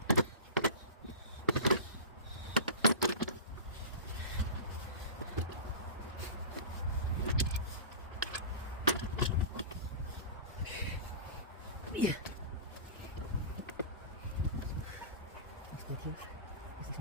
Yeah. Let's here. What's this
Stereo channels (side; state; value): both; inverted; correlation -0.32